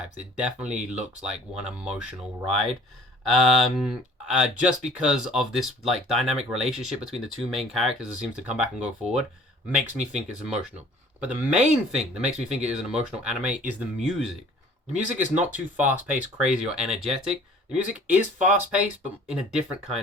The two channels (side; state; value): both; normal; correlation 0.51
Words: It definitely looks like one emotional ride. Just because of this like dynamic relationship between the two main characters that seems to come back and go forward. makes me think it's emotional. But the main thing that makes me think it is an emotional anime is the music. The music is not too fast-paced, crazy, or energetic. The music is fast-paced, but in a different